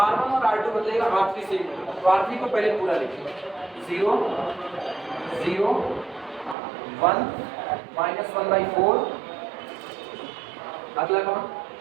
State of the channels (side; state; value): left; drops out; at 6.6 s